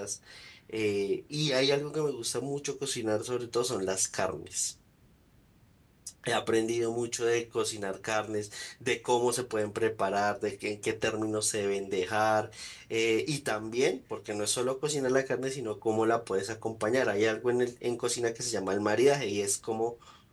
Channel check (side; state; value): both; identical; correlation 1.00